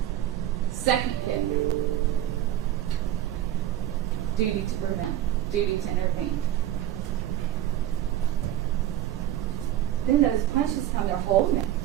Second kick. Duty to prevent. Duty to intervene. Then those punches come, they're holding it.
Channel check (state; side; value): quieter; left; 12.3 dB